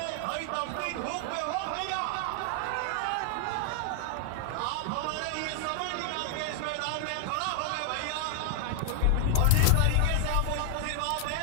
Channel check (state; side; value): different; both; correlation 0.00